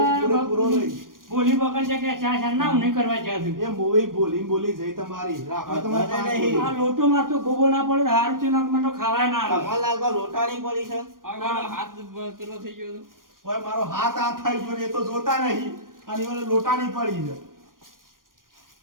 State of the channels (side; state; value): left; late; 0.90 ms